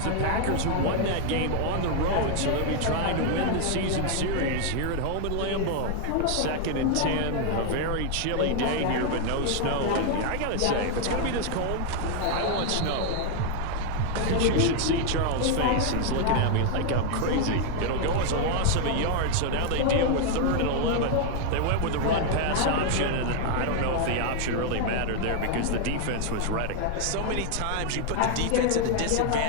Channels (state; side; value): different; both; correlation 0.01